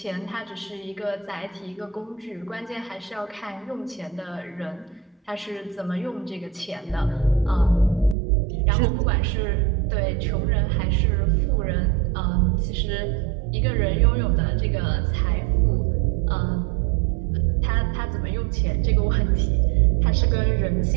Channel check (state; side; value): drops out; left; at 8.2 s